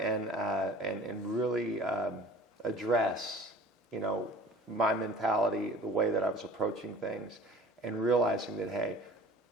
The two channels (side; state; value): both; normal; correlation 0.45